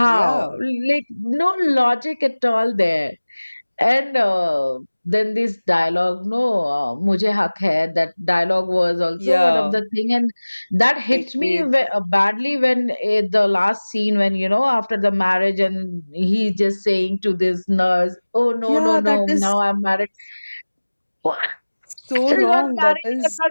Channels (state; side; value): inverted; both; correlation -1.00